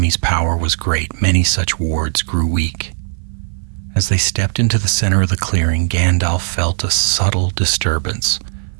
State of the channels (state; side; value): silent; left; 57 dB below the other